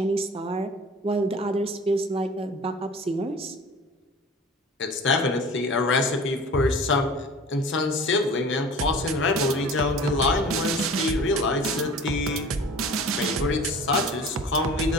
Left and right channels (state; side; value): normal; both; correlation 0.41